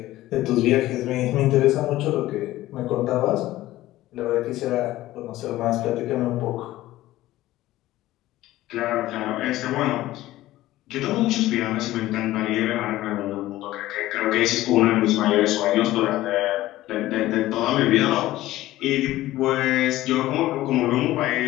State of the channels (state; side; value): quieter; right; 15.9 dB